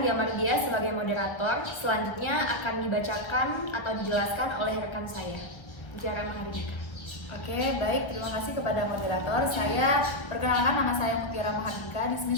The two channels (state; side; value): late; right; 1.2 ms